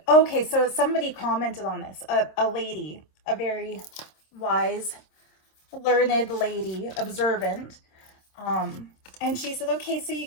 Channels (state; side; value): late; right; 26 ms